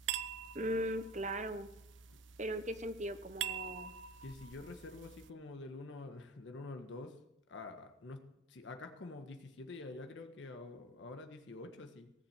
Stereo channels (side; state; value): both; normal; correlation 0.35